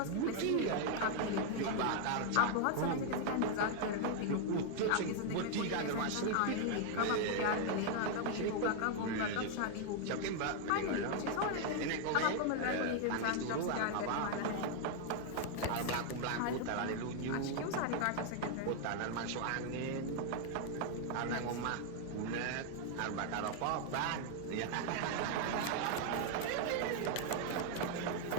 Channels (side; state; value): both; different; correlation 0.00